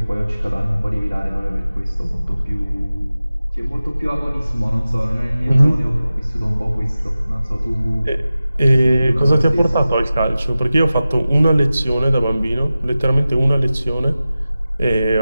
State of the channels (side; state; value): both; inverted; correlation -0.95